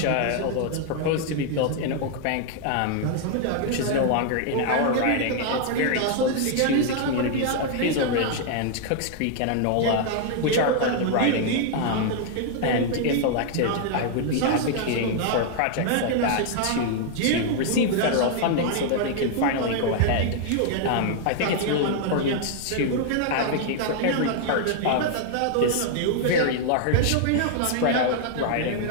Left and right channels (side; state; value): both; different; correlation 0.00